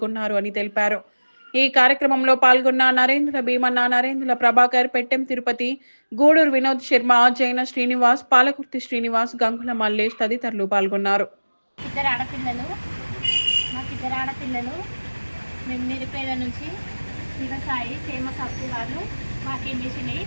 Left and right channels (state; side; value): inverted; both; correlation -1.00